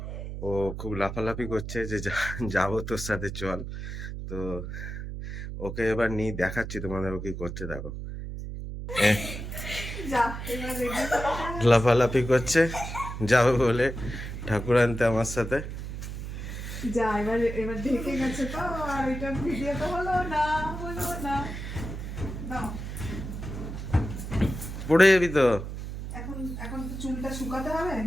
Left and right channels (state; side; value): noise; right; hum, 7 dB below the sound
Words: ও খুব লাফালাফি করছে যে যাবো তোর সাথে চল। তো ওকে এবার নিয়ে দেখাচ্ছি তোমাদের ও কি করছে দেখো। লাফালাফি করছে যাবে বলে ঠাকুর আনতে আমার সাথে। যা এবার এবার ঢেকে গেছে তো, আর এটা ভিডিও তো হলো না। নাও, পড়ে যাবি তো। এখন এখন তো চুলটা শুকাতে হবে,